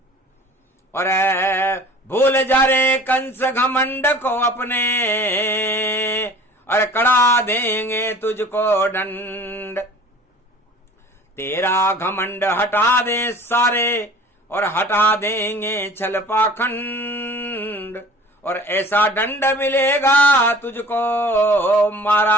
और भूल जा रे कंस घमंड को अपने, और कड़ा देंगे तुझको दंड। तेरा घमंड हटा दे सारे और हटा देंगे छल पाखंड, और ऐसा दंड मिलेगा तुझको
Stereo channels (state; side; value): normal; both; correlation 0.45